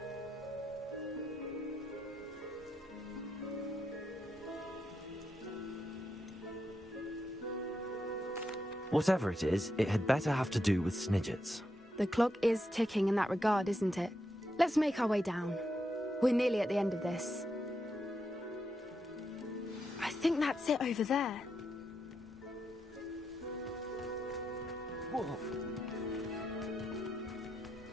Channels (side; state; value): both; normal; correlation 0.83